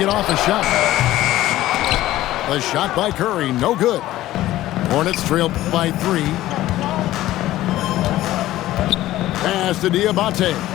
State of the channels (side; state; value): right; quieter; 15.2 dB